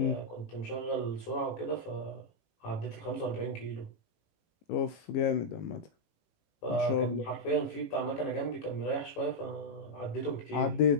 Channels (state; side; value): late; right; 18 ms